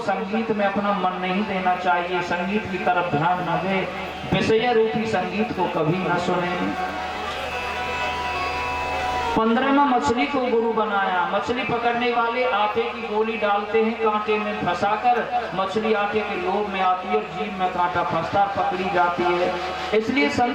संगीत में अपना मन नहीं देना चाहिए, संगीत की तरफ ध्यान न दे, विषय रूपी संगीत को कभी न सुने। 15वां मछली को गुरु बनाया। मछली पकड़ने वाले आटे की गोली डालते हैं कांटे में फंसाकर, मछली आटे के लोभ में आती है और जीभ में कांटा फंसता पकड़ी जाती है। इसलिए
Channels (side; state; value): both; identical; correlation 1.00